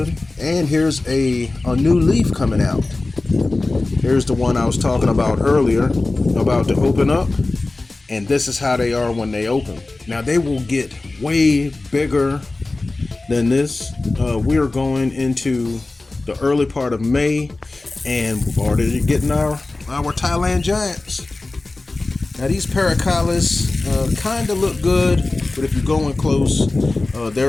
and here's a new leaf coming out. Here's the one I was talking about earlier, about to open up, and this is how they are when they open. Now they will get way bigger than this. We're going into the early part of May, and we're already getting our Thailand giants. Now these Paracalis kind of look good, but if you're going close,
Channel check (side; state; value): right; quieter; 3.2 dB